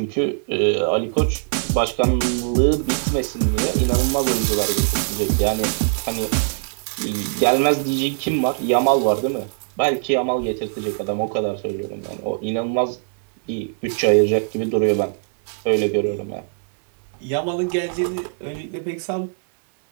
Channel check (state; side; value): silent; left; digital silence